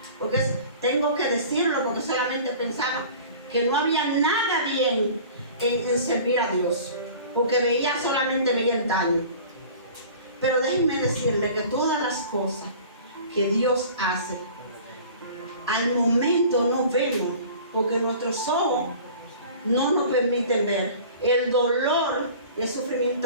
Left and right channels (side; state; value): both; inverted; correlation -0.43